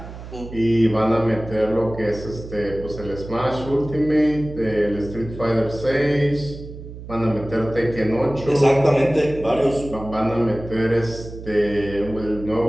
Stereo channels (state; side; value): noise; right; hum, 13 dB below the sound